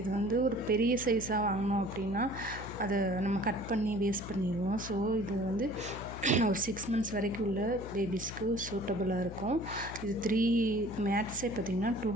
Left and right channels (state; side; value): noise; left; hum, 10 dB below the sound